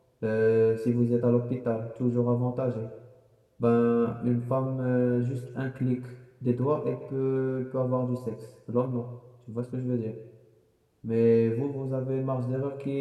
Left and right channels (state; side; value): identical; both; correlation 1.00